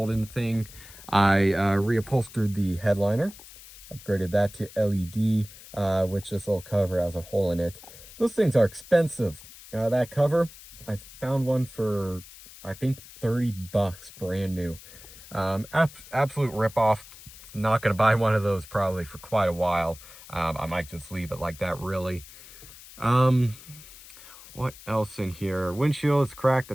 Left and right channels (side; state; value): left; noise; hiss, 18 dB below the sound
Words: in the thing. I reupholstered the headliner, upgraded that to LED, which this little cover has a hole in it. Those things are expensive. That cover, I found one for, I think, 30 bucks, brand new. Absolute ripoff. Not going to buy one of those probably for quite a while. I might just leave it like that, really. What else in here? Windshield is cracked. I